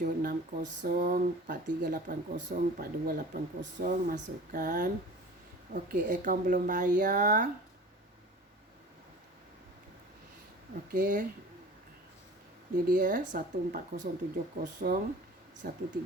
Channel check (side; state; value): both; normal; correlation 0.41